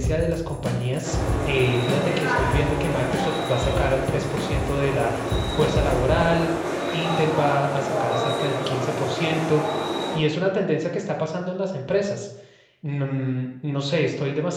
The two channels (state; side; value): identical; both; correlation 1.00